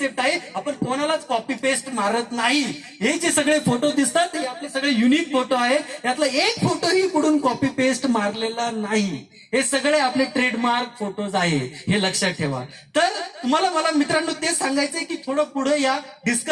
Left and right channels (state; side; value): identical; both; correlation 1.00